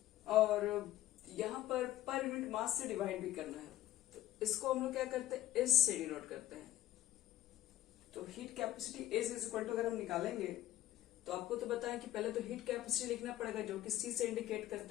और यहां पर यूनिट मास से डिवाइड भी करना है, तो इसको हम लोग क्या करते हैं, एस से डिनोट करते हैं। तो heat capacity s is equal to अगर हम निकालेंगे तो आपको तो बताया कि पहले तो हीट कैपेसिटी लिखना पड़ेगा जो कि सी से इंडिकेट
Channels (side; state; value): right; quieter; 14.1 dB